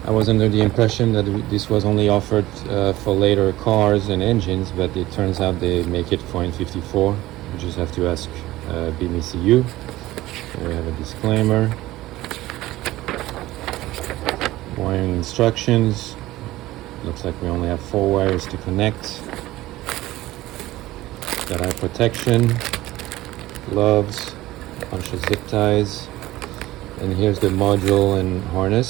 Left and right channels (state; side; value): quieter; left; 16.8 dB